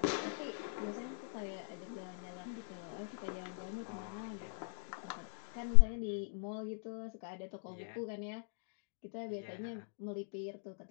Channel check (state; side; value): silent; right; digital silence